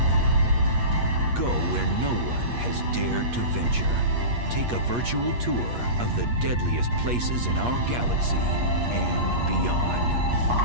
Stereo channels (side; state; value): left; late; 8.4 ms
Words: Go where no one has dared to venture. Take a virtual tour of the deadliest places in our galaxy and beyond.